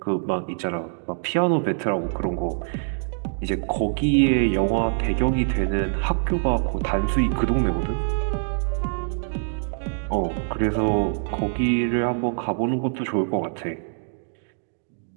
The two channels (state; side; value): silent; left; digital silence